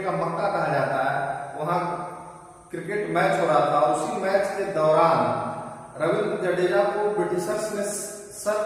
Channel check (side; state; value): both; identical; correlation 1.00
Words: का मक्का कहा जाता है, वहां क्रिकेट मैच हो रहा था, और उसी मैच के दौरान रविंद्र जडेजा को ब्रिटिशर्स ने सर